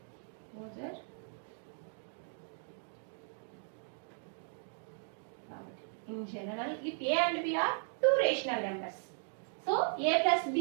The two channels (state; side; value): silent; left; digital silence